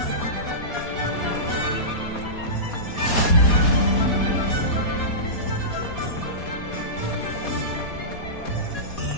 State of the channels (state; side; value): late; right; 4.2 ms